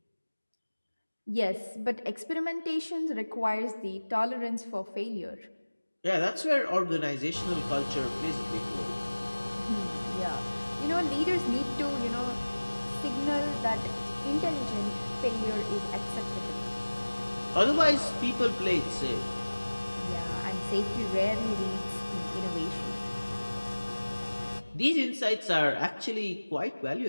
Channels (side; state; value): both; inverted; correlation -1.00